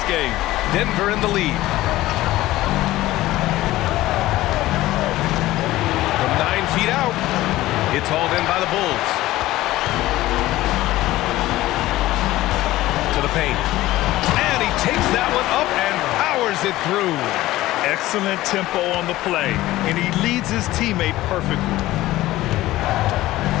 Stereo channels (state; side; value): quieter; right; 16.6 dB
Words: game. Denver in the lead. From 9 feet out, it's hauled in by the Bulls. To the paint. And he takes that one up and powers it through. Excellent tempo on the play, and he leads his teammate perfectly.